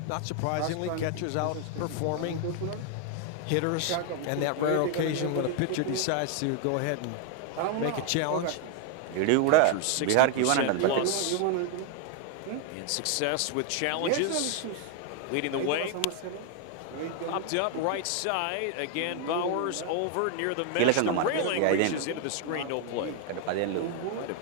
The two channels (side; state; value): both; different; correlation 0.00